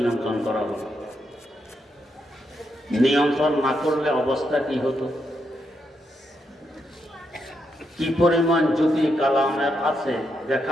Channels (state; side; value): normal; both; correlation 0.81